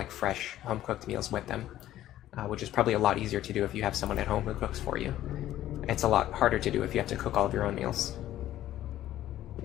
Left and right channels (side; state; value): right; quieter; 13.3 dB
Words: fresh home-cooked meals with them, which is probably a lot easier to do if you have someone at home who cooks for you. It's a lot harder to do if you have to cook all of your own meals.